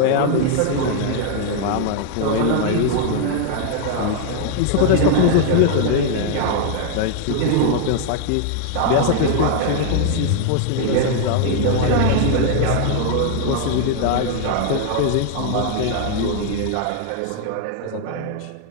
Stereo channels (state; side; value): different; both; correlation 0.00